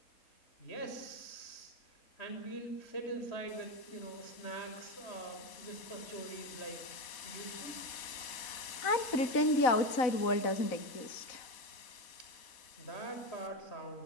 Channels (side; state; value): right; late; 4.1 ms